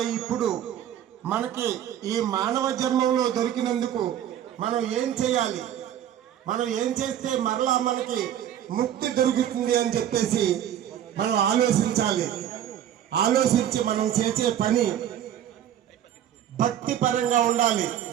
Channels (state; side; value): quieter; left; 10.6 dB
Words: ఇప్పుడు మనకి ఈ మానవ జన్మంలో దొరికినందుకు మనం ఏం చేయాలి, మనం ఏం చేస్తే మరలా మనకి ముక్తి దొరుకుతుంది అని చెప్పేసి మనం ఆలోచించాలి. ఆలోచించి మనం చేసే పని భక్తి పరంగా ఉండాలి,